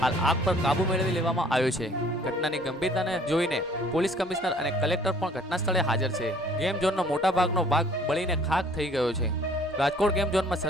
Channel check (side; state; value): both; normal; correlation 0.56